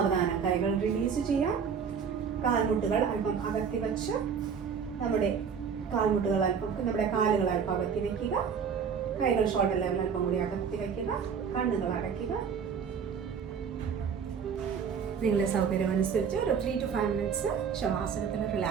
കൈകൾ റിലീസ് ചെയ്യാം. കാൽമുട്ടുകൾ അല്പം അകത്തി വച്ച് നമ്മുടെ കാലുകൾ അല്പം അകത്തി വയ്ക്കുക. കൈകൾ ഷോൾഡർ ലെവൽ അല്പം കൂടി അകത്തി വയ്ക്കുക. കണ്ണുകൾ അടയ്ക്കുക. നിങ്ങളുടെ സൗകര്യം അനുസരിച്ച് ഒരു 3 to 5 മിനിറ്റ്സ് ശവാസനത്തിൽ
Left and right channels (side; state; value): left; quieter; 6.7 dB